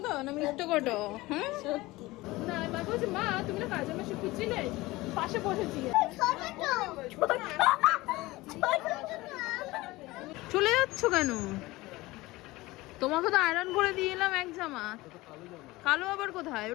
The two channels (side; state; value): right; quieter; 20.0 dB